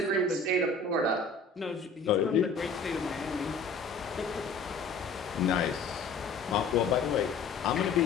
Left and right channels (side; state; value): right; quieter; 4.2 dB